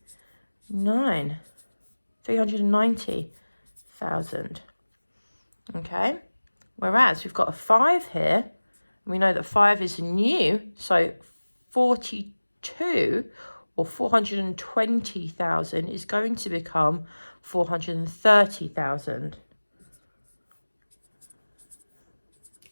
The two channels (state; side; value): inverted; both; correlation -1.00